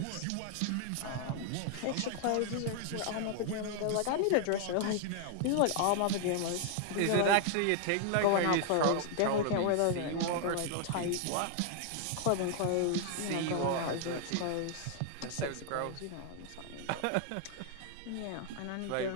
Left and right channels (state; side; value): different; both; correlation 0.00